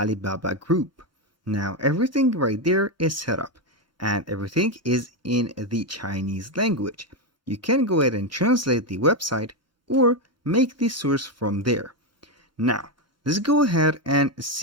Group. Now everything right there is set up and everything is in the Chinese language. You can go ahead and translate the website or make the source from there. Now, let's go ahead and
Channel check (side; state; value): right; late; 3.3 ms